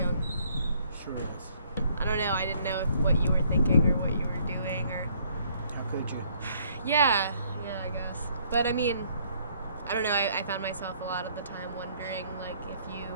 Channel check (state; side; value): inverted; both; correlation -0.63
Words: Sure is. I don't know, I didn't know what you were thinking or what you were doing or... How could you? Yeah, I guess. But I mean, I don't know, I found myself a lot of the time wondering, if you